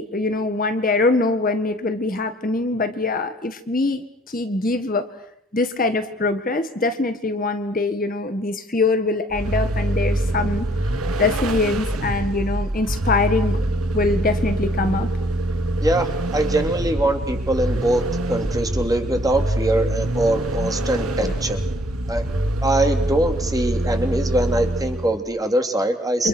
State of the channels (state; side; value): normal; both; correlation 0.61